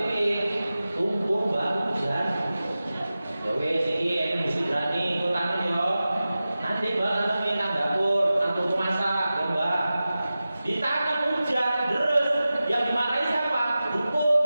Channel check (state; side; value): inverted; both; correlation -0.95